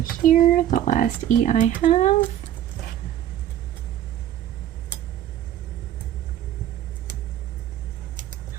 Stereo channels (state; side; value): quieter; left; 11.4 dB